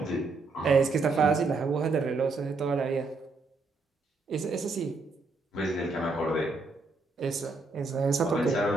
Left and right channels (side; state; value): left; quieter; 3.7 dB